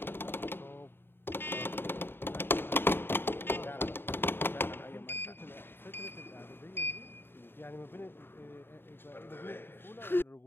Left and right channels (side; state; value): right; late; 0.10 ms